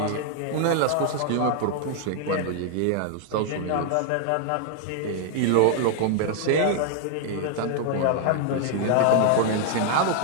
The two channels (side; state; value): both; different; correlation 0.00